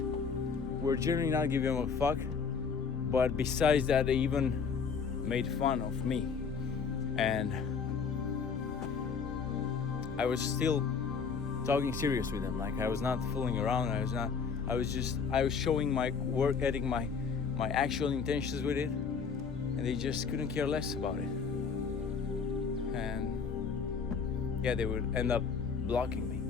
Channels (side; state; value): right; quieter; 5.8 dB